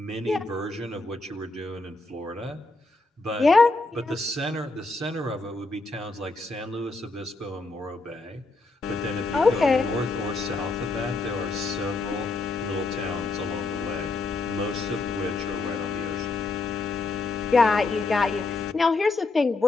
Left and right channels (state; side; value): quieter; right; 3.4 dB